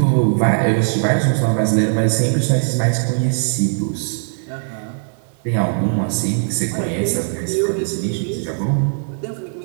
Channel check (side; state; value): left; silent; digital silence